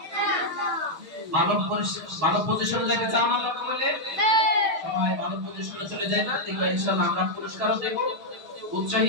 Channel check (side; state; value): left; late; 6.5 ms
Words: ভালো পজিশনে যেতে চাও না? আমরা বলে সবাই ভালো পজিশনে চলে যায় না, দেখো ইনশাআল্লাহ আমরা পুরস্কারও দেব,